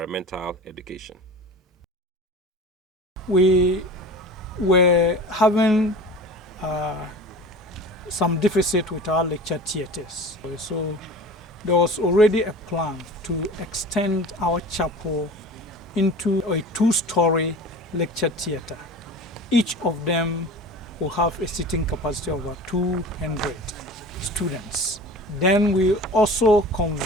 Education. We were having some deficit with our lecture theatres. So there was already a plan to extend our chapel into a 2-story lecture theatre. Each of them will have a seating capacity of about 200 students. Then we also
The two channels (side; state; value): both; normal; correlation 0.37